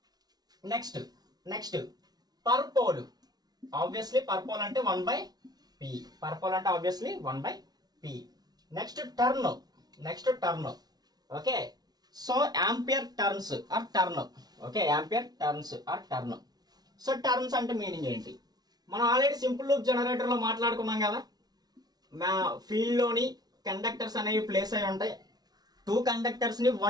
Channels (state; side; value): late; left; 0.19 ms